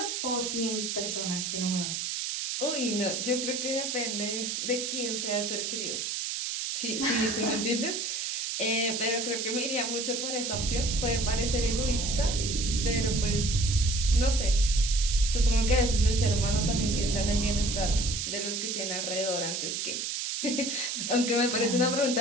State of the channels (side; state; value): right; noise; hiss, 2 dB below the sound